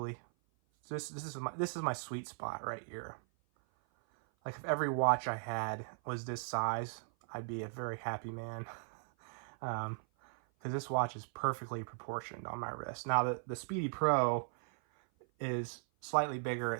So this is my sweet spot right here. Like, if every watch I had was this size, I'd be a very happy man. Because this watch is perfectly proportioned on my wrist. Now the Speedy Pro is slightly bigger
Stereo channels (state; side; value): silent; left; 52 dB below the other